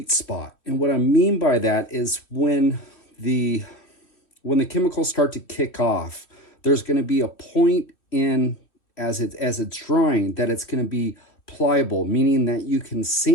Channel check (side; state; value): right; late; 2.9 ms